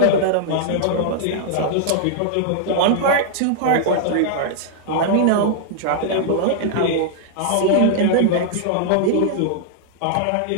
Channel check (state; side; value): different; both; correlation -0.01